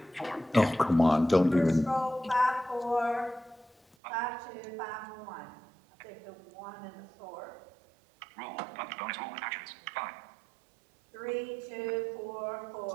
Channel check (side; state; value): left; drops out; at 4.0 s